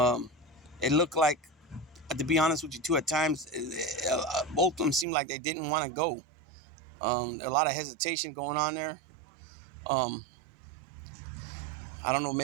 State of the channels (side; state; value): left; drops out; at 5.1 s